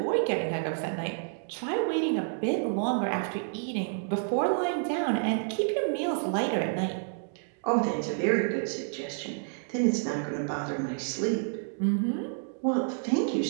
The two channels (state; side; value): silent; left; digital silence